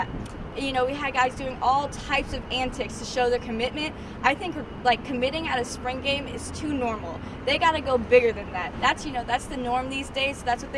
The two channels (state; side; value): identical; both; correlation 1.00